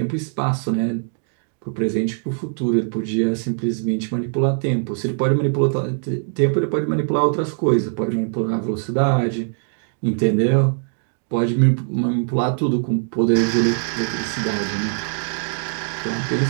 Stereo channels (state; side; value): silent; left; digital silence